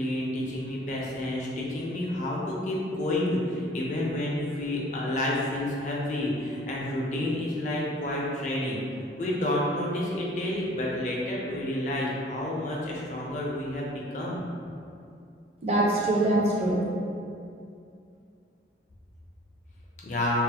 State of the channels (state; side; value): normal; both; correlation 0.50